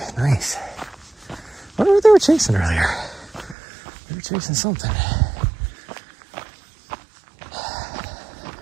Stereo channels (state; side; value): drops out; left; at 3.6 s